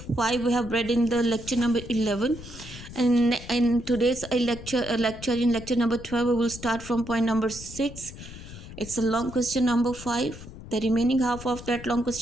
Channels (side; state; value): left; noise; rumble, 14 dB below the sound